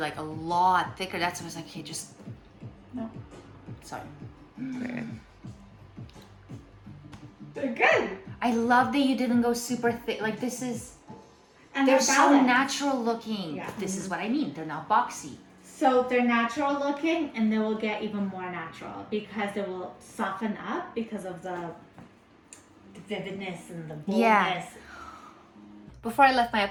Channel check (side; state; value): both; identical; correlation 1.00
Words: like a lot thicker. That's why I was like, okay, just. No. Sorry. They're good. I love that you didn't go super thick. Like, this is. And They're they're so balanced. natural looking. Yeah. This is what I mean. They're not boxy. So they're natural looking, and they will get even more natural because they will soften up because of the vividness and the boldness. Yeah. Before I left my